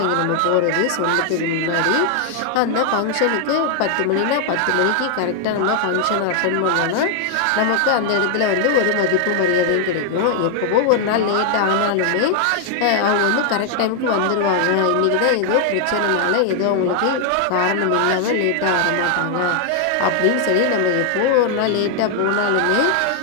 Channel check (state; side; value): different; both; correlation 0.00